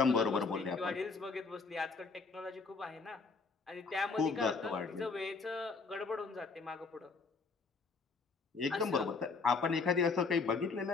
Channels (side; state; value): right; quieter; 4.4 dB